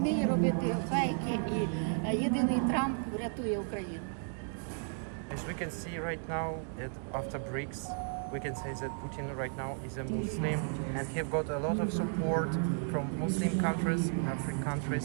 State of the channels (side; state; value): left; silent; 55 dB below the other